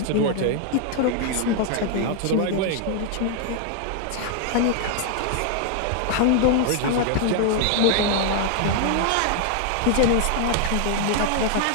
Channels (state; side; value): different; both; correlation 0.00